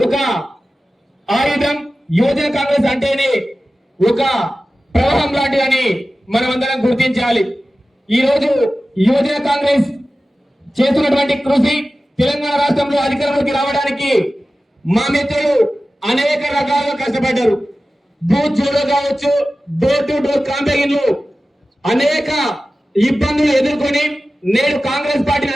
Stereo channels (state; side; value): normal; both; correlation 0.95